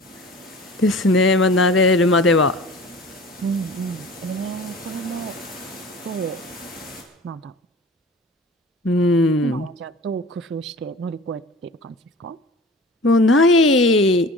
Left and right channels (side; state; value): both; normal; correlation 0.41